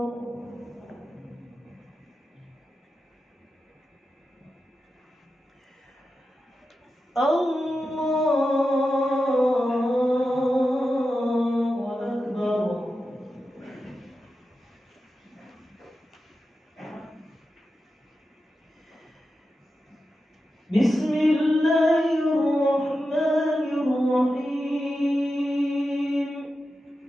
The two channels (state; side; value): normal; both; correlation 0.91